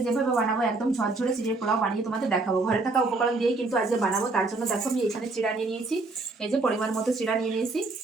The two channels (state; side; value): quieter; left; 3.4 dB